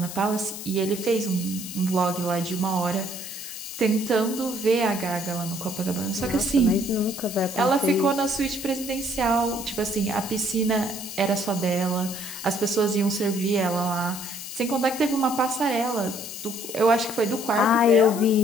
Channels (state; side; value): noise; left; hiss, 10 dB below the sound